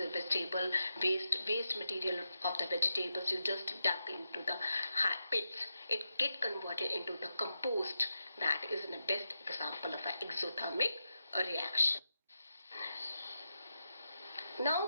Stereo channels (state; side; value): inverted; both; correlation -0.88